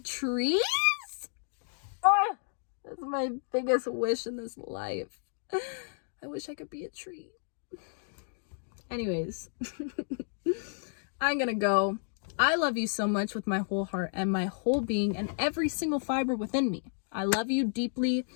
Oh, that's my biggest wish in this life. I wish I could be a tree. Anyways, I'm gonna go. I love you so much with my whole heart and my whole being and every single fiber within me. I love you deeply.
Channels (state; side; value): silent; right; digital silence